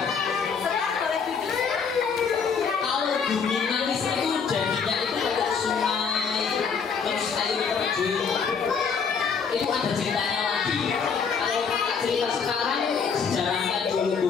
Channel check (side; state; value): right; quieter; 6.0 dB